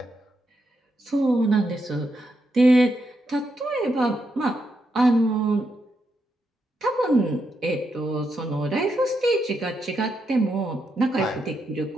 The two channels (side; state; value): both; normal; correlation 0.82